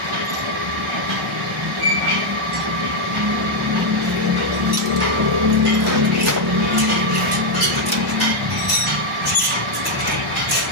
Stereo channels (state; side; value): normal; both; correlation 0.00